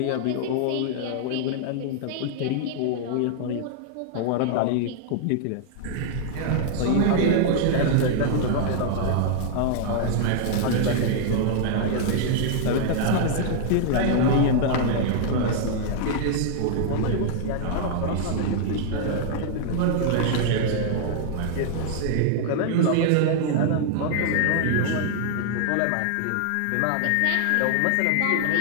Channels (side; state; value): both; different; correlation -0.01